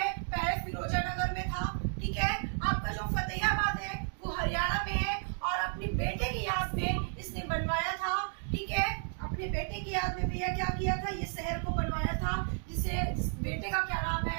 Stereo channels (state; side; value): silent; left; 56 dB below the other